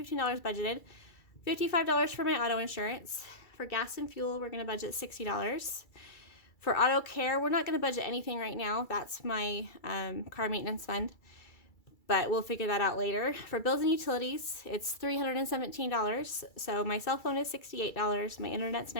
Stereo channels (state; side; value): late; right; 2.3 ms